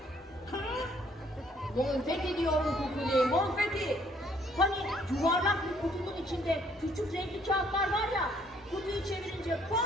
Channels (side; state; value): both; normal; correlation 0.64